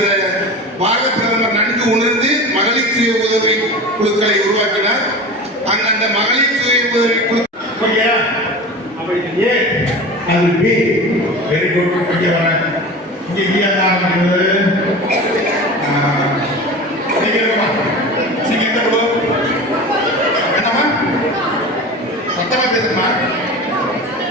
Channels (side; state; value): both; normal; correlation 0.32